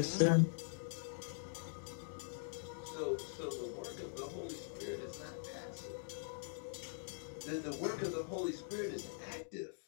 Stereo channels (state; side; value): silent; right; digital silence